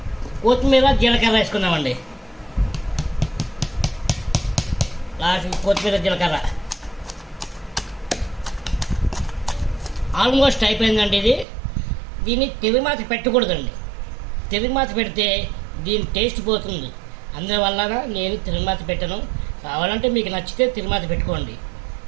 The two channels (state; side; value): drops out; left; at 11.5 s